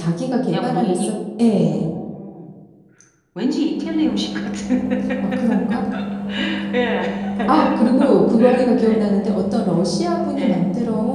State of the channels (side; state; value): both; identical; correlation 1.00